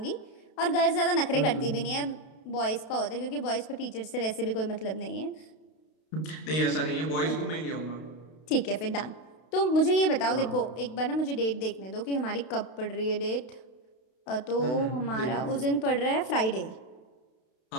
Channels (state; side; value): late; right; 32 ms